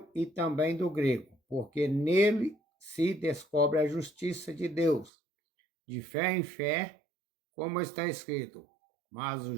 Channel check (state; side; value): drops out; left; at 5.1 s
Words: e também do grego, porque nele se descobre a justiça de Deus, de fé em fé, como está escrito, mas o